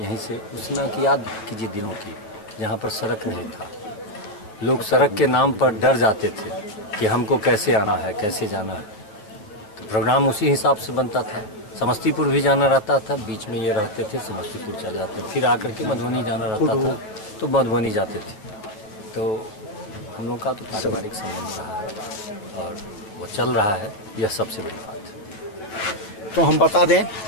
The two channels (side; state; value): right; late; 9.5 ms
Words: से उस समय की याद कीजिए दिनों की, जहाँ पर सड़क नहीं था। लोग सड़क के नाम पर डर जाते थे कि हमको कैसे आना है, कैसे जाना है। तो प्रोग्राम उसी हिसाब से बनता था। समस्तीपुर भी जाना रहता था, बीच में ये रहते थे, समस्तीपुर चले जाते थे, फिर आकर के मधुबनी जाना रहता था तो मधुबनी जाते थे। तो हम लोग का तो पारिवारिक संबंध रहा है और वो चल रहा है, यह सबसे बड़ी बात है। तो हम बता दें,